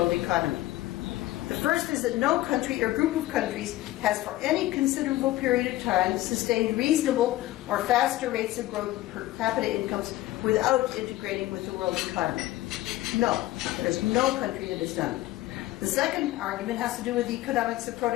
economy. The first is that no country or group of countries has for any considerable period of time sustained reasonable or faster rates of growth per capita incomes without integrating with the world economy. No, there's no country that has done it. The second argument has to do with the economics of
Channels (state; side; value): quieter; right; 16.6 dB